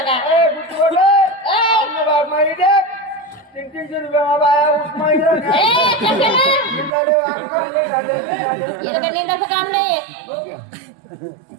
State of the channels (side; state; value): left; drops out; at 6.9 s